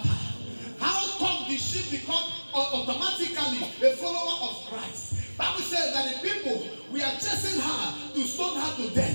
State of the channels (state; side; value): inverted; both; correlation -1.00